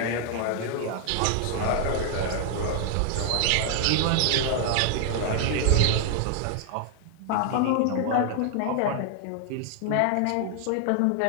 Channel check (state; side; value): different; both; correlation 0.00